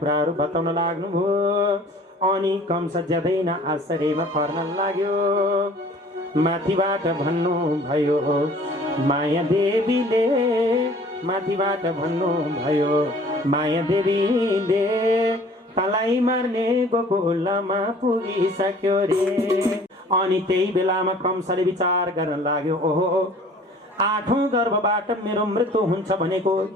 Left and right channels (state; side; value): normal; both; correlation 0.50